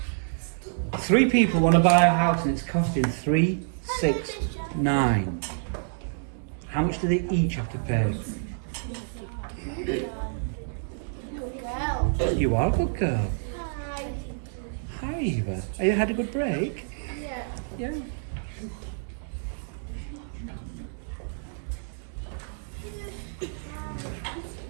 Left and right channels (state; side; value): silent; left; 59 dB below the other